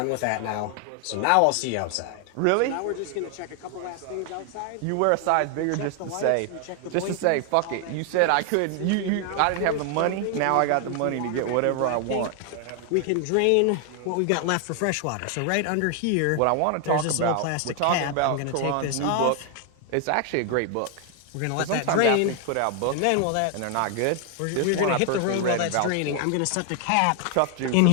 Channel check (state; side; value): different; both; correlation 0.00